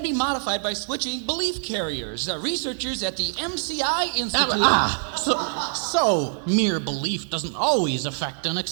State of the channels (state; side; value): silent; left; digital silence